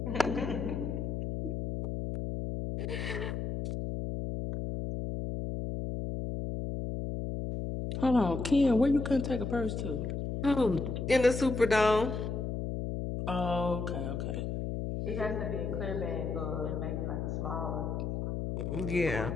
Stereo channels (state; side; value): noise; left; hum, 3 dB below the sound